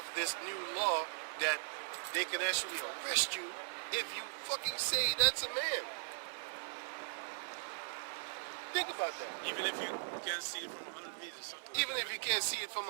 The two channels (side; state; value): left; silent; 52 dB below the other